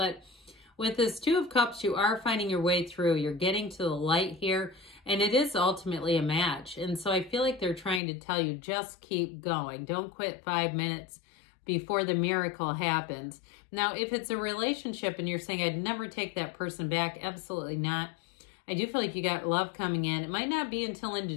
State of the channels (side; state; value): right; drops out; at 8.0 s